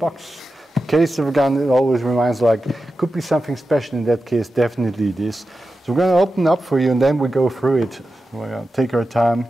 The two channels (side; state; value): both; normal; correlation 0.92